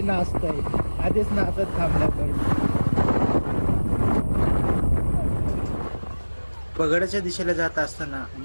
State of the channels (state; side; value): inverted; both; correlation -1.00